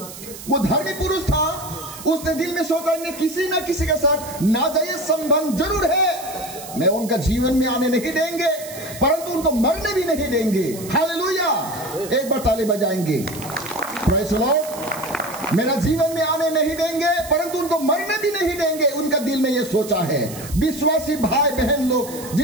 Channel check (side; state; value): right; noise; hiss, 14 dB below the sound